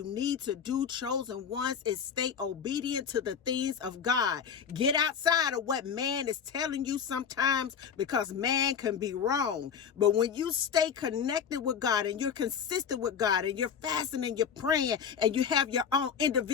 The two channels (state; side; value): quieter; right; 7.2 dB